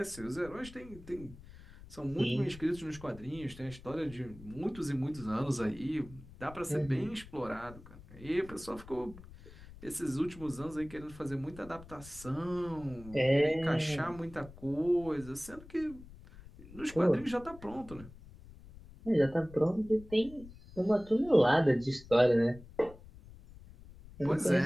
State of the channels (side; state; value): left; noise; rumble, 18 dB below the sound